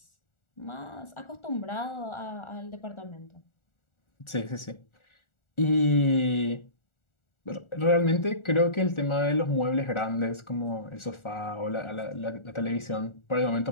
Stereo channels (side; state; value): right; late; 1.4 ms